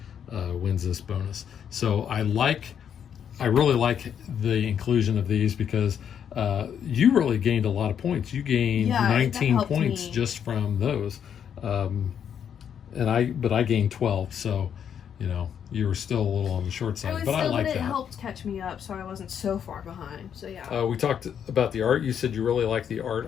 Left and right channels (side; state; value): right; quieter; 8.4 dB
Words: wins this bonus. So I really like the inclusion of these because you really gained a lot of points. You gained 19 points just from those. But I gained 12, so you were still a little on the short side. I like that. It helped catch me up, so I wasn't so far behind. So yeah. We talked about the art. You said you really like the